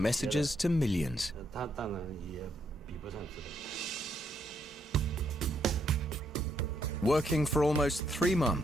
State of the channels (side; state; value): both; normal; correlation 0.75